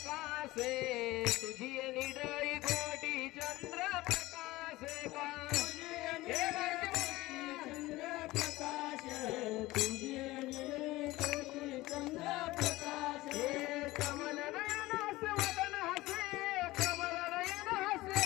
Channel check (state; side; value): quieter; right; 18.8 dB